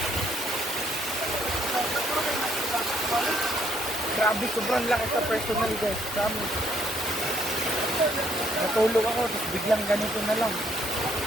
Grabe, sobrang lakas sa personal guys. Promise. Natulog ako, tapos biglang ganito na lang.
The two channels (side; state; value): both; normal; correlation 0.68